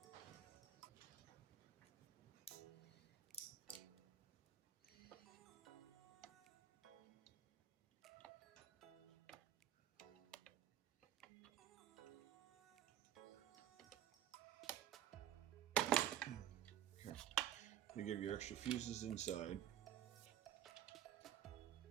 They give you extra fuses inside.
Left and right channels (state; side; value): quieter; left; 11.4 dB